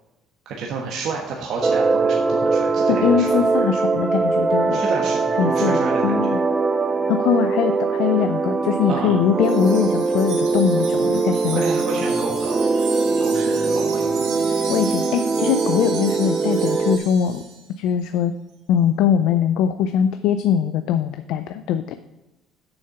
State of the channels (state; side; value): normal; both; correlation 0.60